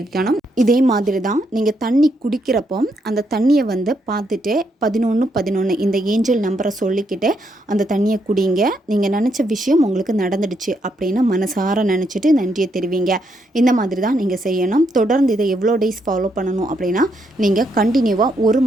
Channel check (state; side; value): normal; both; correlation 0.77